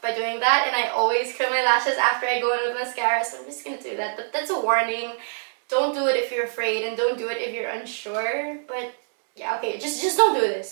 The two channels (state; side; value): silent; left; digital silence